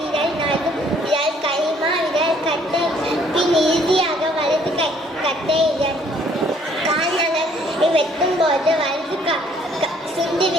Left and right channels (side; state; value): both; normal; correlation 0.62